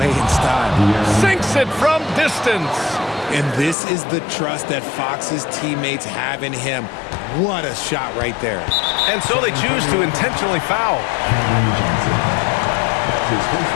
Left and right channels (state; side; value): drops out; right; at 3.8 s